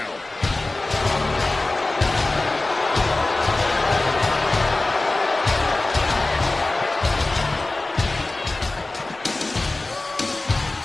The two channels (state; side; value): quieter; right; 3.0 dB